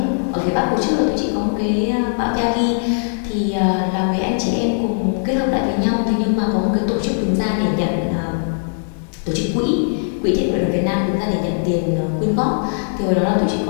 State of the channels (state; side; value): silent; right; digital silence